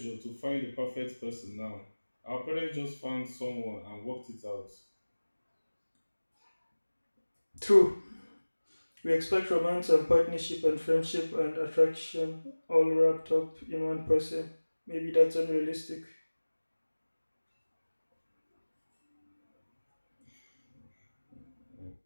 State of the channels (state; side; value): inverted; both; correlation -1.00